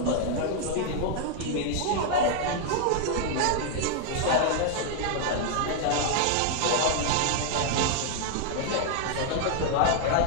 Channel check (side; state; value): both; different; correlation 0.00